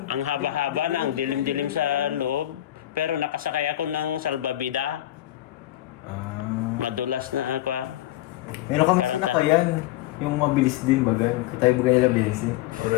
ang haba-haba na, ang dilim-dilim sa loob. Pero nakasakay ako ng salbabida. Madulas na ako. Meron kami Parang sinaka yan. Yung mabilis din baga. Tayo baga nila Benzi.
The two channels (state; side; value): quieter; right; 14.4 dB